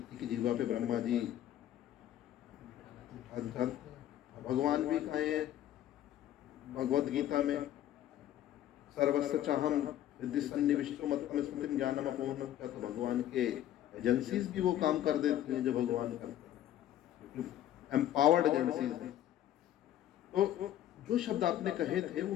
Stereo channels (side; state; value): right; quieter; 12.1 dB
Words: की जीवा पे ब्रह्मा जी भगवान भी कहे हैं भगवत गीता में, सर्वस्व चाहम रिद्धि सन्निविष्टो मत्तम स्मृतिम ज्ञानम अपूर्णम। क्या तो भगवान के एजेंसीज भी वो काम कर देती हैं जो भगवान करते हैं, एम्पावर्ड एजेंसीज हैं। तो जो शब्द आपने कहे थे वो